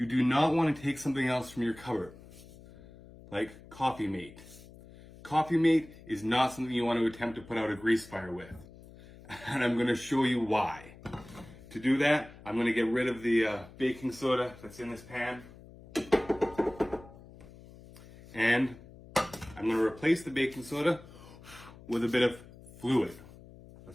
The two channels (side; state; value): left; noise; hum, 20 dB below the sound